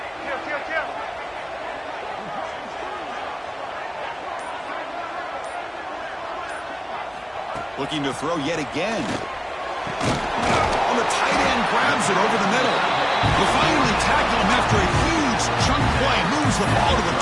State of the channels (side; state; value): both; identical; correlation 1.00